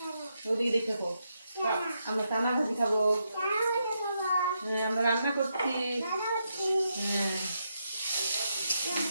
ওদিকে দেখে খাবো। আমরা চানা ভাজি খাবো। হ্যাঁ, আমরা রান্না করছি। হ্যাঁ,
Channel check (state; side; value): inverted; both; correlation -0.81